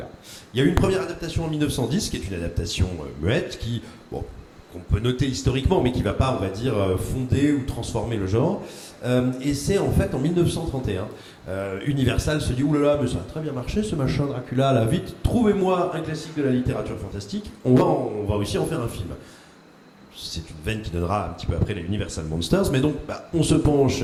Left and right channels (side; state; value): both; identical; correlation 1.00